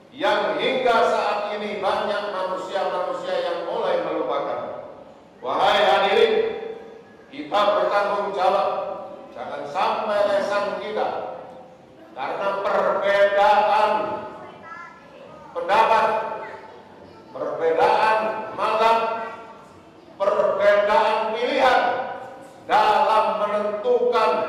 yang hingga saat ini banyak manusia-manusia yang mulai melupakan. Wahai hadirin, kita bertanggung jawab, jangan sampai lesan kita karena perbedaan pendapat, perbedaan mazhab, perbedaan pilihan dalam menentukan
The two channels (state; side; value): identical; both; correlation 1.00